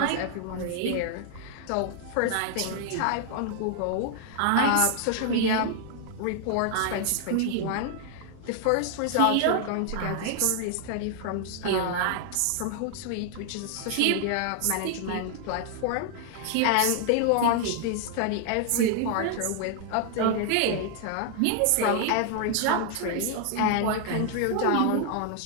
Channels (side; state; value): both; different; correlation 0.00